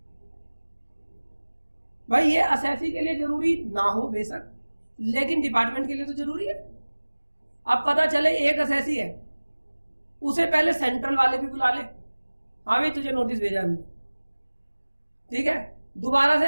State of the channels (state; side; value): inverted; both; correlation -1.00